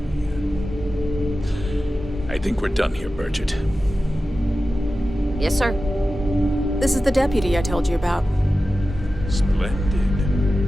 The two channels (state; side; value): normal; both; correlation 0.94